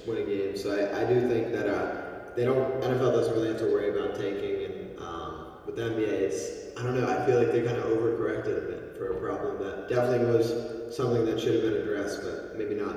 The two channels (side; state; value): both; identical; correlation 1.00